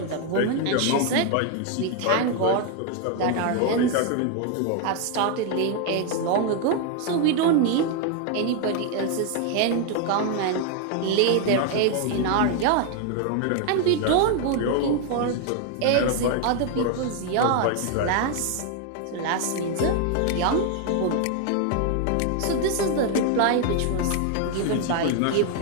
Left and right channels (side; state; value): both; different; correlation 0.01